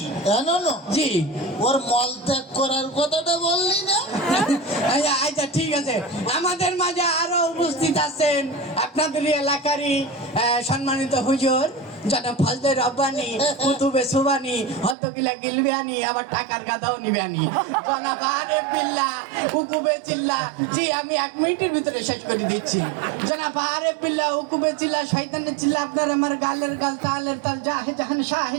জি, ওর মল ত্যাগ করার কথাটা বললি না? আচ্ছা ঠিক আছে, আমাদের মাঝে আরো উপস্থিত আছেন আপনাদের এলাকারই সম্মানিত হুজুর জনাব ফজলে রব্বানি, কুতুবে সুবানি, হদ্দকিলা গিলবিয়ানি, আবার টাকার গাদাও নিবানি, জনাব আরেফ বিল্লাহ, উকুবে চিল্লা। জি, আমি 1 মিনিটের ভিতরে শেষ করে দিচ্ছি। জনাব আরেফ বিল্লাহ, উকুবে চিল্লা, শয়তানের চিল্লা, আপনার আমার গালের গাল, তালের তাল, জাহে জাহান, শাহে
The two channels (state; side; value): drops out; left; at 15.0 s